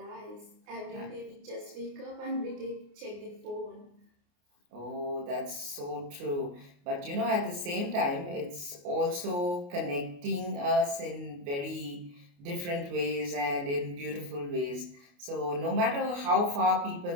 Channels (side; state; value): left; late; 28 ms